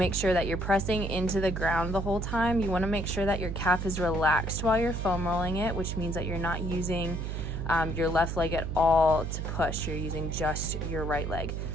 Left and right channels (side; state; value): right; noise; hum, 4 dB below the sound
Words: sure that you're pressing into the ground the whole time, you want to make sure that your calf is relaxed while you're foam rolling it, which means that you're not using your left leg at all to push. You're using just your right leg.